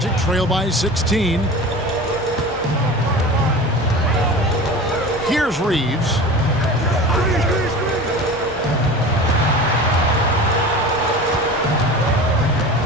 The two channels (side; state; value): both; normal; correlation 0.35